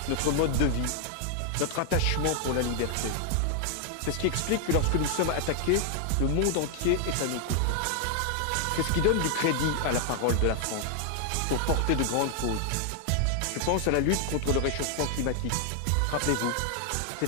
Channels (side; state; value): both; different; correlation 0.00